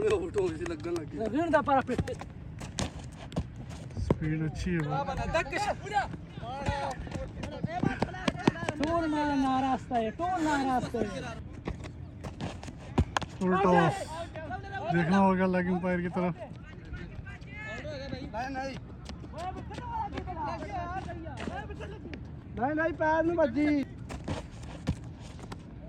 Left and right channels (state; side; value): identical; both; correlation 1.00